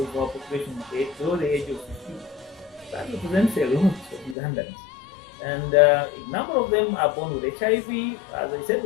our population is below the age of 15. that represents a lot of Ugandans. And a number of them are born with HIV. As I said,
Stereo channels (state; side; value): drops out; right; at 4.4 s